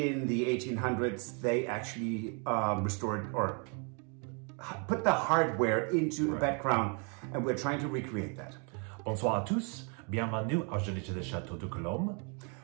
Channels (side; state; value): left; quieter; 36.8 dB